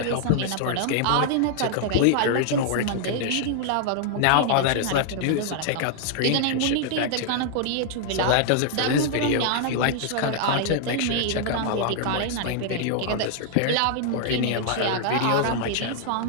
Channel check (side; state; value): both; different; correlation 0.00